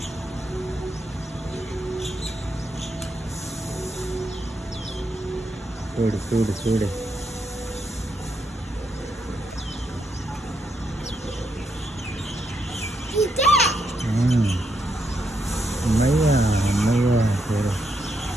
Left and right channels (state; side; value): normal; both; correlation 0.79